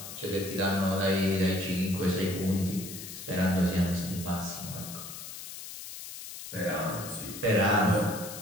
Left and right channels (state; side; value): noise; left; hiss, 11 dB below the sound